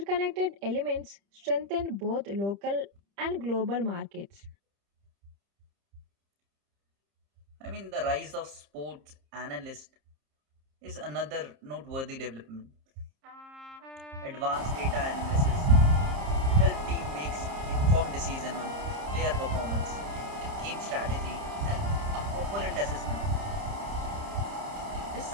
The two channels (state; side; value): late; left; 30 ms